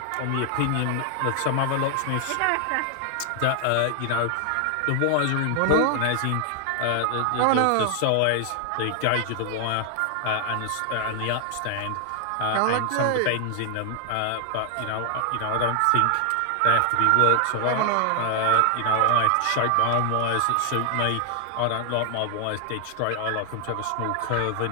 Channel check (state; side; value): different; both; correlation 0.00